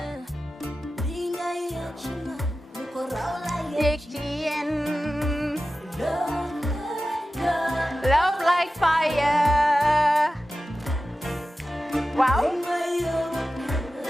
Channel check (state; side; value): normal; both; correlation 0.94